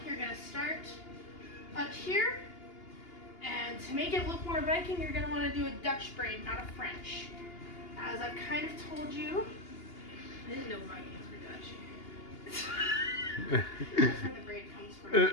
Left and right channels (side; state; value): right; late; 2.8 ms